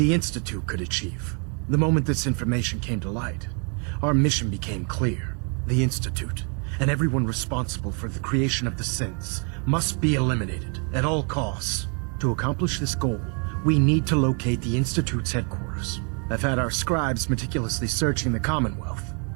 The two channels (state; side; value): quieter; left; 38.3 dB